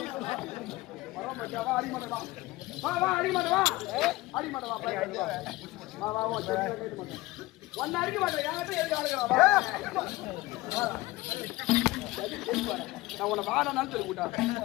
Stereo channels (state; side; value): quieter; right; 19.6 dB